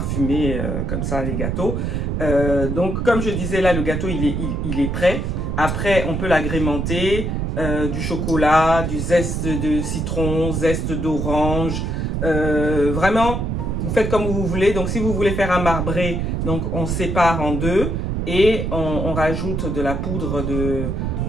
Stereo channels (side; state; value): right; noise; rumble, 1 dB below the sound